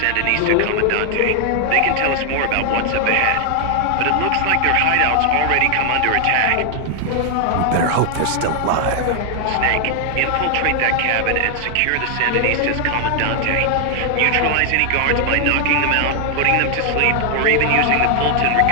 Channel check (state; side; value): different; both; correlation 0.00